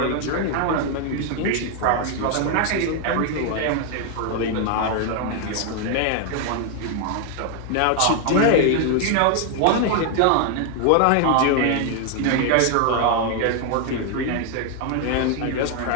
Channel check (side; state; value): both; different; correlation 0.00